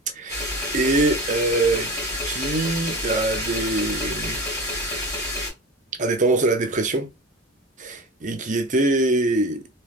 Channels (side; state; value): both; normal; correlation 0.32